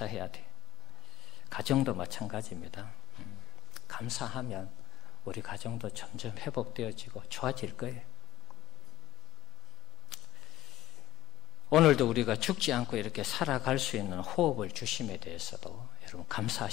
돼. 가정도 마찬가지입니다. 감사하면 우리 가정도 점점 회복되어지고 좋아질 거예요. 오늘도 우리가 죽지 않고 이렇게 살아갈 수 있는 호흡을 주심에 대해서도 여러분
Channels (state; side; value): quieter; right; 15.3 dB